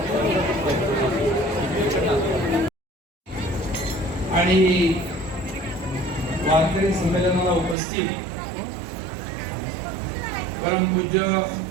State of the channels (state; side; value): drops out; left; at 7.8 s